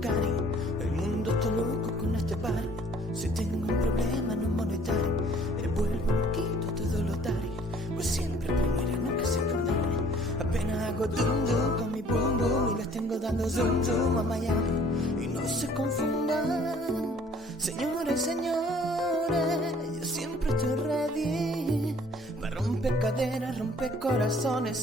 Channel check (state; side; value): normal; both; correlation 0.56